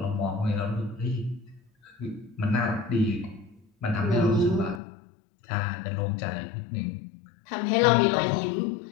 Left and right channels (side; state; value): right; drops out; at 4.8 s